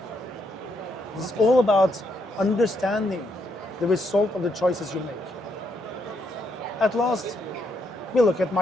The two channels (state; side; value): normal; both; correlation 0.76